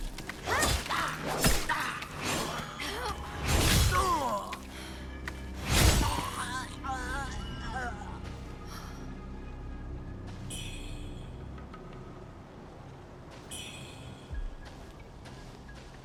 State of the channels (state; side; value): identical; both; correlation 1.00